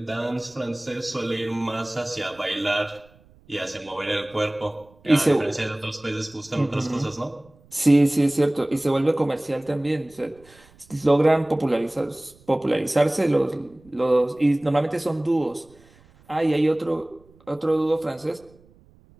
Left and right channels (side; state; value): right; noise; rumble, 29 dB below the sound